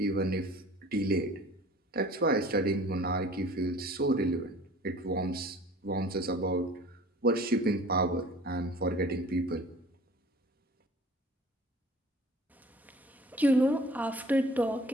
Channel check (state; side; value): normal; both; correlation 0.47